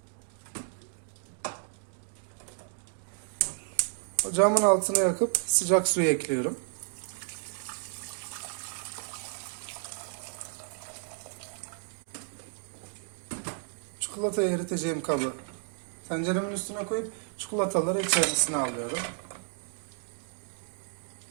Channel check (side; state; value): left; silent; 57 dB below the other